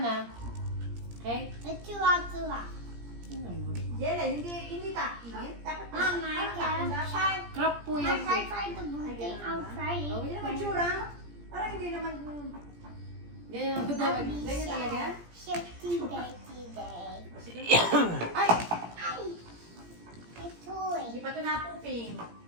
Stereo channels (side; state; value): left; late; 17 ms